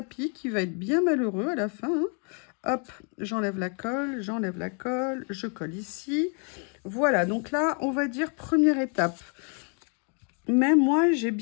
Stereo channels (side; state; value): right; quieter; 39.0 dB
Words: qui va être bien malheureux à la fin, hein. Hop, j'enlève la colle, je colle ici. Voilà, donc là, on va dire première étape. Mais moi, j'ai